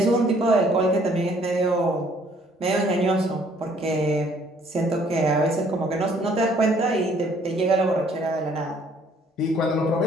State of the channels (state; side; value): normal; both; correlation 0.61